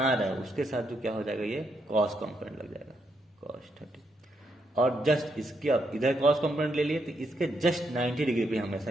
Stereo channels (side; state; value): both; normal; correlation 0.78